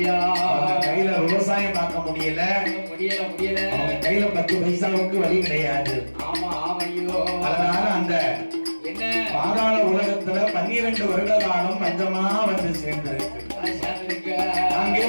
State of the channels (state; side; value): inverted; both; correlation -1.00